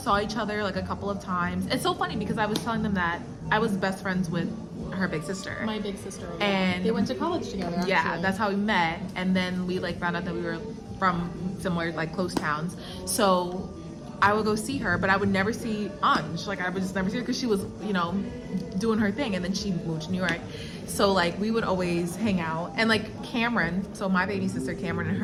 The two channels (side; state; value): both; identical; correlation 1.00